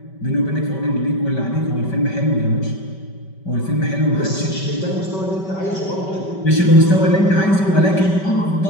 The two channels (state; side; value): late; right; 5.2 ms